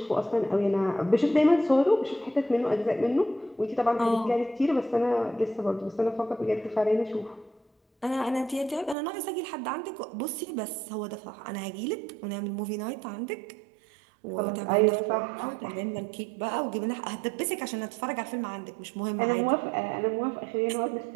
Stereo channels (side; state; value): left; drops out; at 9.0 s